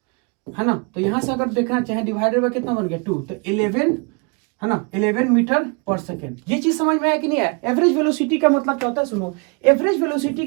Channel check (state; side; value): quieter; left; 32.9 dB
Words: है ना। तो यहां से अगर देखना चाहे डिवाइडेड बाय कितना बन गया 2, तो 11, है ना, 11 मीटर पर सेकेंड। ये चीज समझ में आया कि नहीं आया। एवरेज वेलोसिटी का मतलब क्या होता है, सुनो। एवरेज वेलोसिटी